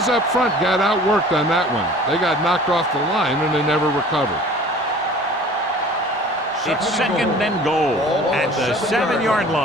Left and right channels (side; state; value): both; normal; correlation 0.46